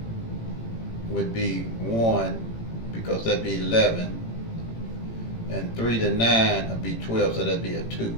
would be 1, because that'd be 11. And 3 to 9 would be 12, so that'd be a 2.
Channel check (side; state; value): right; late; 18 ms